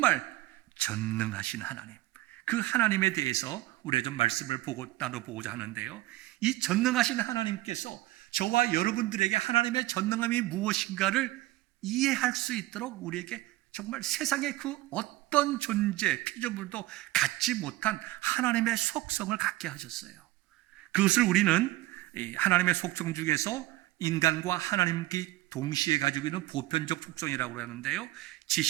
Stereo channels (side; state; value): left; quieter; 17.5 dB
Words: 전능하신 하나님, 그 하나님에 대해서 우리가 좀 말씀을 나눠보고자 하는데요, 이 전능하신 하나님께서 저와 여러분들에게 하나님의 전능함이 무엇인가를 이해할 수 있도록 우리에게 정말 세상의 그 어떤 존재, 피조물도 갖지 못한 하나님의 속성을 갖게 하셨어요. 그것을 우리는 하나님의 속성 중에서 인간과 하나님께 동시에 가지고 있는 보편적 속성이라고 하는데요,